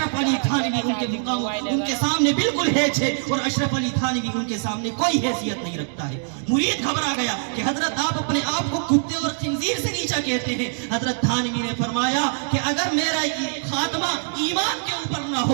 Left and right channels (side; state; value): left; silent; digital silence